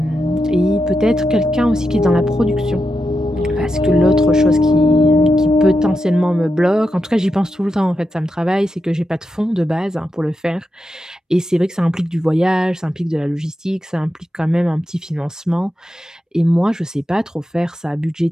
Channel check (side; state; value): both; normal; correlation 0.88